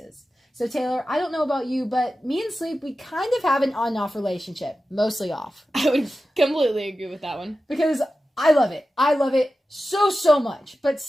So Taylor, I don't know about you, but me and sleep, we kind of have an on and off relationship. Mostly off. I would completely agree with that one. Because I love it. I love it so much. But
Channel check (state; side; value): normal; both; correlation 0.93